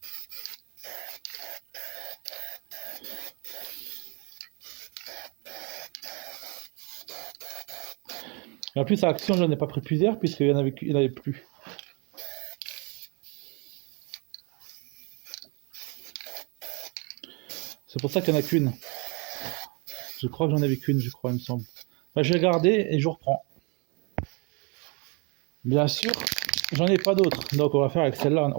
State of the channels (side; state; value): left; quieter; 31.8 dB